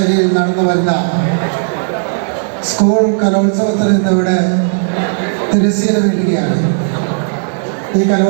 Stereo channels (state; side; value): silent; left; digital silence